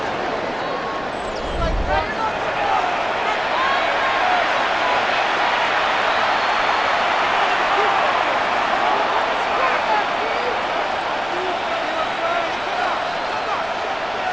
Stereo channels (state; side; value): noise; left; rumble, 22 dB below the sound